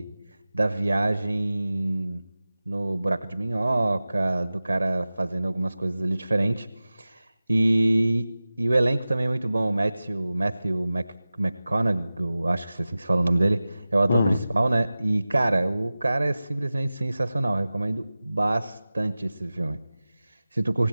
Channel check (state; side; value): inverted; both; correlation -0.96